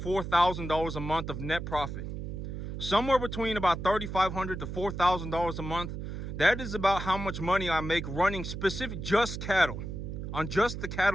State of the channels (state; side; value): noise; right; hum, 6 dB below the sound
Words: a month of net profit. Somewhere between about $3,500 to $4,000 a month. That is about how much money I make running specific just cattle. On just the